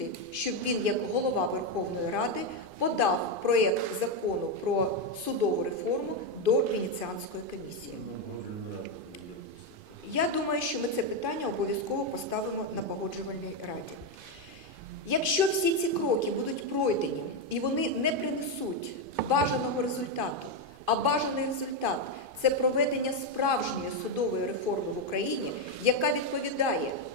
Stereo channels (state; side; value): late; left; 2.5 ms